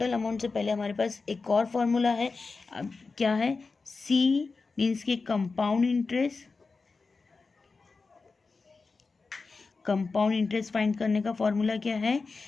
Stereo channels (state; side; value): quieter; right; 4.2 dB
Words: अमाउंट से पहले हमारे पास एक और फॉर्मूला है, अब क्या है सी मीन्स के compound interest, compound interest find करने का फॉर्मूला क्या है